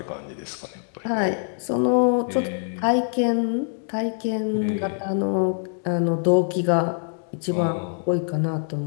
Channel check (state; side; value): silent; right; digital silence